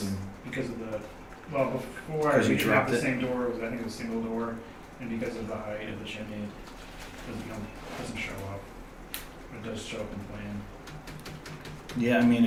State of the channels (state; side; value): identical; both; correlation 1.00